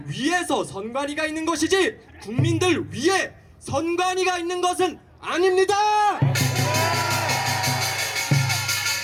위해서 선관위가 있는 것이지 국민들 위해 선관위가 있는 것은 아닙니다.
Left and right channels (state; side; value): identical; both; correlation 1.00